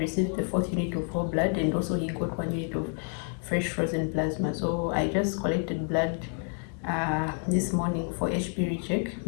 received the 4th unit of whole blood, and also he got 1 unit of fresh frozen plasma. So I just collected blood this morning for HB recheck,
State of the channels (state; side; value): quieter; right; 38.8 dB